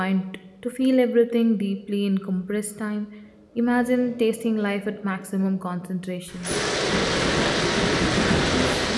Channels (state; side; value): identical; both; correlation 1.00